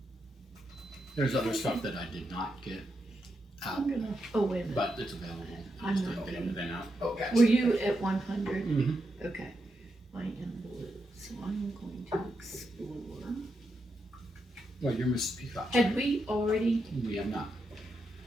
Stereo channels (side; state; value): both; normal; correlation 0.84